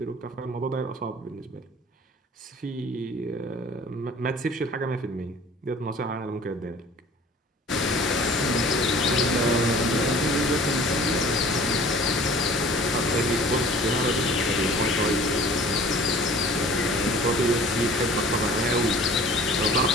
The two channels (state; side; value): normal; both; correlation 0.47